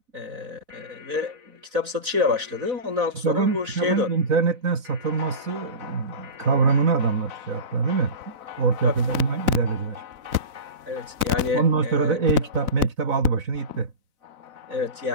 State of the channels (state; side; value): late; left; 4.0 ms